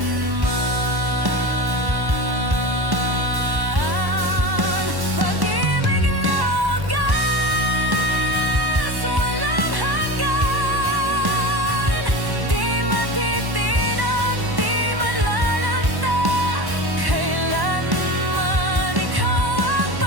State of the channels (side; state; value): left; late; 1.1 ms